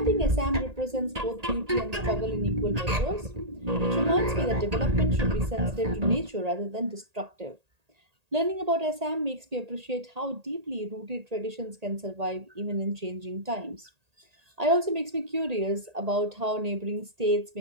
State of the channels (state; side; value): late; left; 1.8 ms